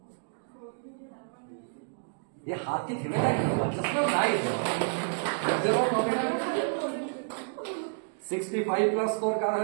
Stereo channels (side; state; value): left; silent; digital silence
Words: ये हाथ की थी ना, चश्मा नहीं देखो। 65+ स्कोर কার